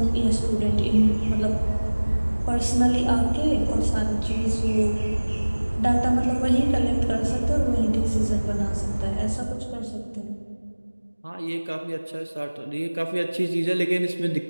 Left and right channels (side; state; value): both; inverted; correlation -1.00